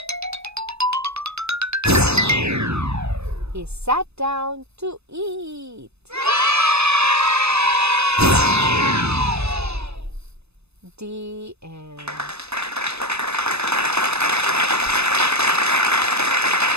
He sat down to eat. The end.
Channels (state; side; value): late; left; 0.80 ms